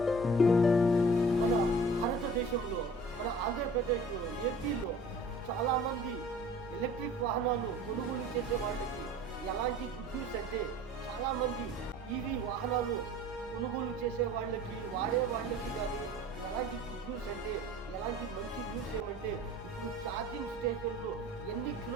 మన భారతదేశంలో మన ఆంధ్రప్రదేశ్లో ఏపీలో చాలామంది ఎలక్ట్రిక్ వాహనాలు కొనుగోలు చేసే వాళ్ళకి ఎలాంటి గుడ్ న్యూస్ అంటే చాలామంది ఈవీ వాహనాలు కొనుగోలు చేసే వాళ్ళకి వాడే వాళ్ళకి కానీ ఎలాంటి గుడ్ న్యూస్ అంటే ఎలాంటి మంచి న్యూస్ ఏమంటే ఇప్పుడు ఛార్జింగ్ స్టేషన్లు ఎన్ని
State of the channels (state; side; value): normal; both; correlation 0.46